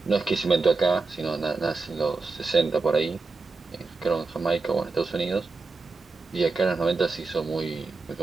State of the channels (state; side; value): quieter; left; 4.0 dB